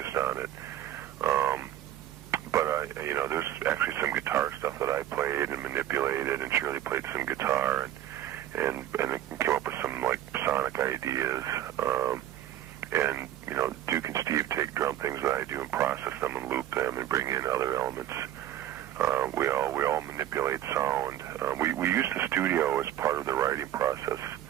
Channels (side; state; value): left; quieter; 12.1 dB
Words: on it. But there's actually some guitar stuff that I played and manipulated, and Shirley played some guitar and came up with some sonic ideas. And Duke and Steve take drum things that I do and process them and loop them and bring in other elements. We all manipulate sound. We use the studio as part of the writing process.